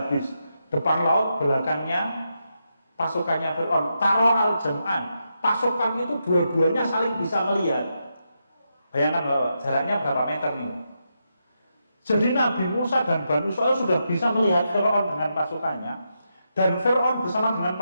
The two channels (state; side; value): inverted; both; correlation -0.84